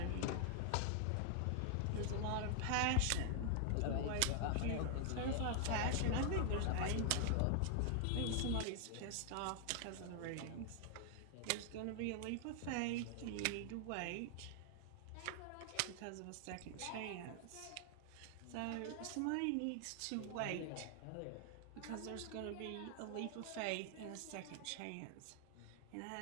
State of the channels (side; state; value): both; different; correlation 0.00